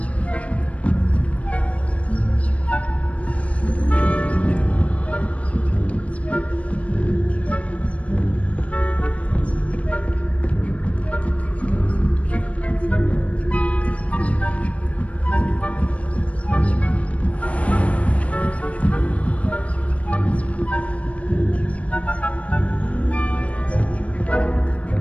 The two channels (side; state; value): right; late; 0.065 ms